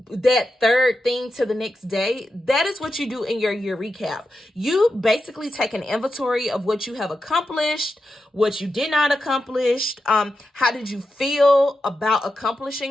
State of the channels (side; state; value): both; normal; correlation 0.89